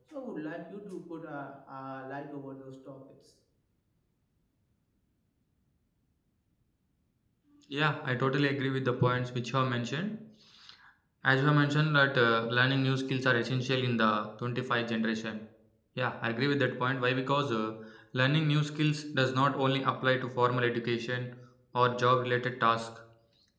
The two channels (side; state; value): both; identical; correlation 1.00